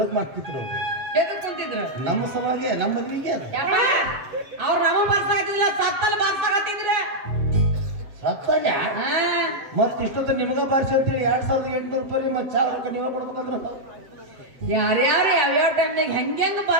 ಮಾಡ್ತಿದ್ರು ಅವ್ರು ಎದಕ್ ಕುಂತಿದ್ರು ನಮ್ಮ ಸಮಾಜ ನಮ್ಮ ಮದುವೆಗೆ ಅವ್ರು ನಮ್ಮ ಬಾರ್ಸಾಗತ್ತಿಲ್ಲ ಸತ್ತಲ್ಲಿ ಬಾರ್ಸಾಗತ್ತಿದ್ರ ಸತ್ತಲ್ಲ ಮತ್ ಇಷ್ಟೊತ್ತ ನಿಮಗ ಬಾರಿಸಿ ಅಂತೇಳಿ 2800 ರೂಪಾಯಿ ಮತ್ ಚಾ ರೊಕ್ಕ ನೀವ ಕೊಡ್ಬೇಕಂದ್ರ ಯಾರ್ಯಾರು ಯಾವ್ಯಾವ ಟೈಮ್ನಾಗ ಹೆಂಗೆಂಗ್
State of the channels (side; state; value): left; late; 7.7 ms